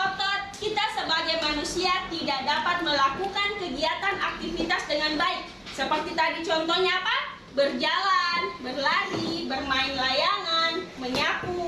kita sebagai manusia tidak dapat melakukan kegiatan aktivitas dengan baik. Seperti tadi contohnya apa? Berjalan, berlari, bermain layangan,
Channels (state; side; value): identical; both; correlation 1.00